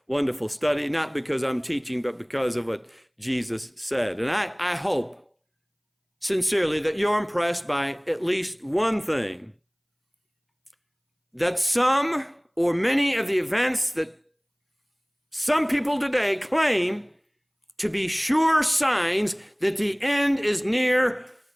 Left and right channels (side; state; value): both; identical; correlation 1.00